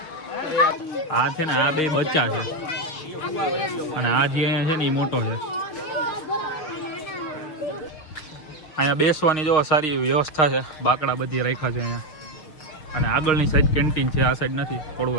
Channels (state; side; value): late; right; 6.4 ms